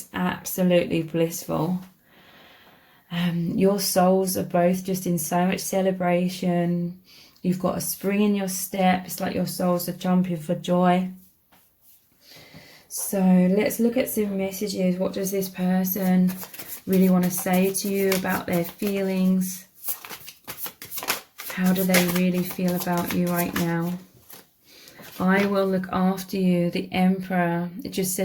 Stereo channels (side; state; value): both; identical; correlation 1.00